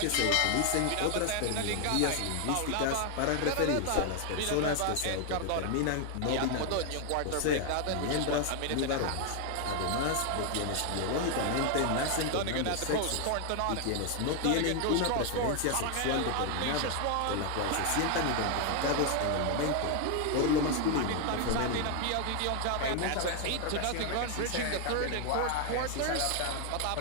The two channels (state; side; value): different; both; correlation 0.01